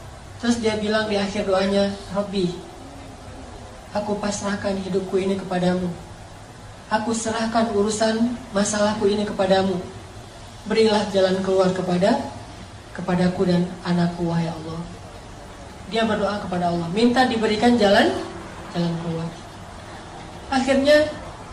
Terus dia bilang di akhir doanya, Rabbi, aku pasrahkan hidupku ini kepadamu. Aku serahkan urusan masalahku ini kepadamu. Berilah jalan keluar kepadaku dan anakku, wahai Allah. Dia berdoa kepada Allah, minta diberikan jalan keluar. Akhirnya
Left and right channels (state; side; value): identical; both; correlation 1.00